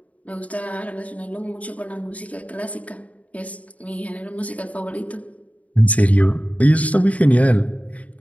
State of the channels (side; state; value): right; late; 0.069 ms